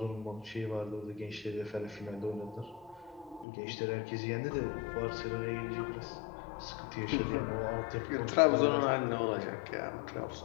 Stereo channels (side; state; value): right; drops out; at 3.5 s